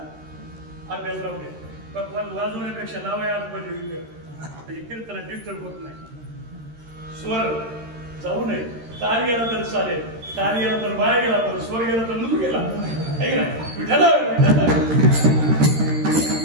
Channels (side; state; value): left; late; 13 ms